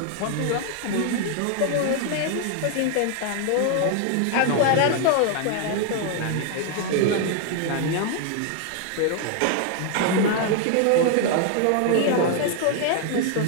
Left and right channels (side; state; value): both; different; correlation 0.00